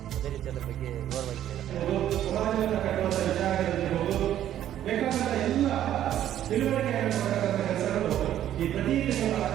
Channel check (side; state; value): left; quieter; 11.5 dB